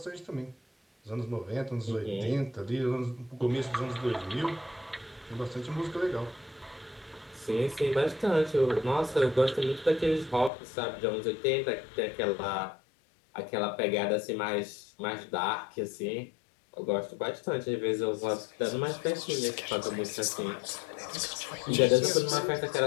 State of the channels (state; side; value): drops out; right; at 10.5 s